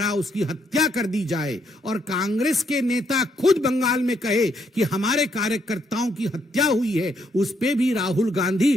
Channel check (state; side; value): normal; both; correlation 0.73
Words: उसकी हत्या कर दी जाए और कांग्रेस के नेता खुद बंगाल में कहे कि हमारे कार्यकर्ताओं की हत्या हुई है, उस पे भी राहुल गांधी